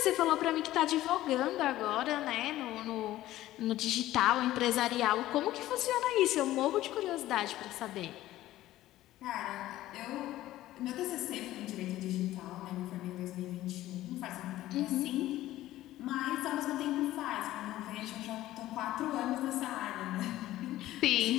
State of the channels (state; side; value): quieter; right; 15.1 dB